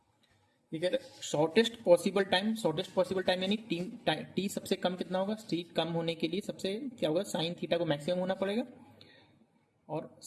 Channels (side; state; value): both; identical; correlation 1.00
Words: shortest possible time यानी टी सबसे कम कितना होगा, टी कम होने के लिए सबसे क्या होगा, साइन थीटा को मैक्सिमम होना पड़ेगा और